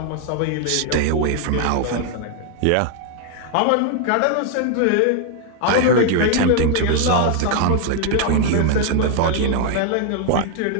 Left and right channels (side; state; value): both; different; correlation 0.00